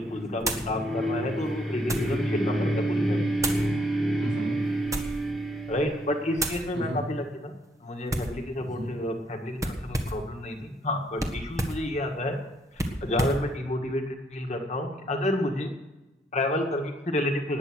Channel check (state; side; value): normal; both; correlation 0.69